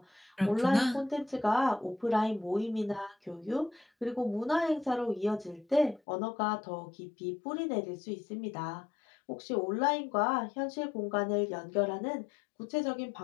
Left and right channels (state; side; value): drops out; right; at 6.0 s